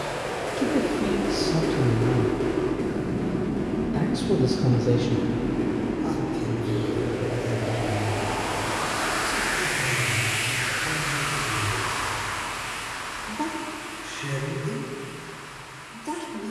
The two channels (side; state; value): both; identical; correlation 1.00